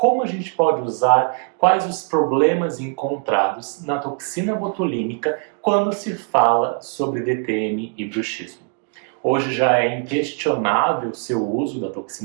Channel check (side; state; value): left; quieter; 38.2 dB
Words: a gente pode usar, quais os problemas encontrados na toxina botulínica quando se fala sobre DTM e bruxismo. Hoje já é inquestionável o seu uso da